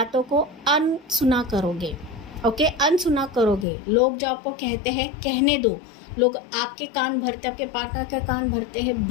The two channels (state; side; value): drops out; right; at 3.7 s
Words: को अनसुना करोगे, ओके, अनसुना करोगे। लोग जो आपको कहते हैं कहने दो, लोग आपके कान भरते, आपके पार्टनर के कान भरते हैं,